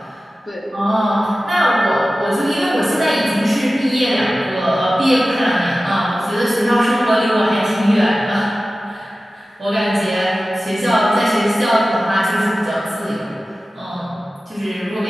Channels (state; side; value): normal; both; correlation 0.95